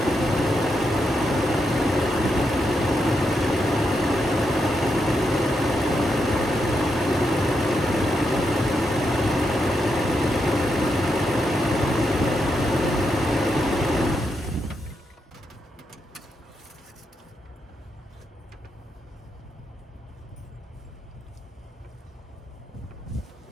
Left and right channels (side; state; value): both; normal; correlation 0.83